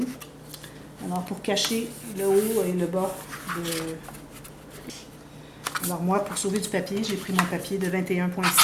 Alors, pour cacher le haut et le bas de... Alors moi, pour sauver du papier, j'ai pris mon papier de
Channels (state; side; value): identical; both; correlation 1.00